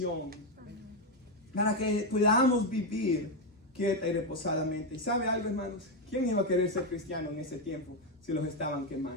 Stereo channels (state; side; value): normal; both; correlation 0.06